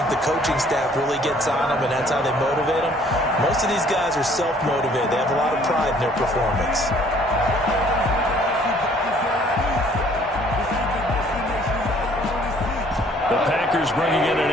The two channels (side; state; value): both; normal; correlation 0.59